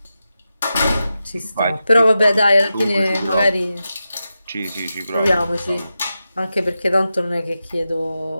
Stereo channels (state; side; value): inverted; both; correlation -0.91